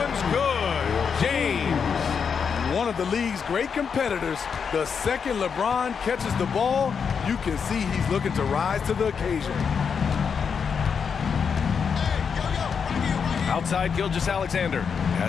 good. James. One of the league's great competitors. The second LeBron catches the ball, you can see he's looking to rise to the occasion. Outside Gilgeous-Alexander.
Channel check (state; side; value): quieter; right; 6.4 dB